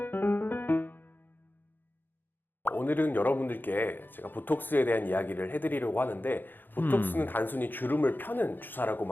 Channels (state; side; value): late; right; 0.092 ms